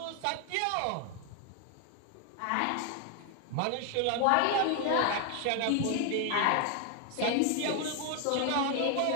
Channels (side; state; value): both; different; correlation 0.00